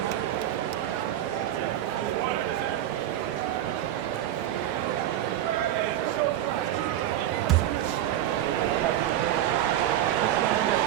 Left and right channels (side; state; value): left; quieter; 12.3 dB